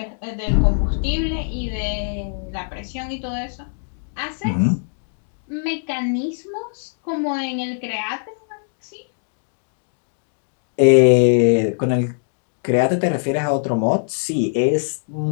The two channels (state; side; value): silent; right; digital silence